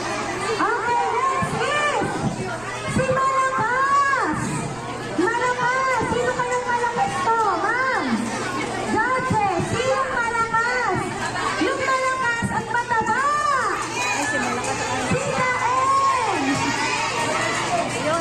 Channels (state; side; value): noise; right; rumble, 22 dB below the sound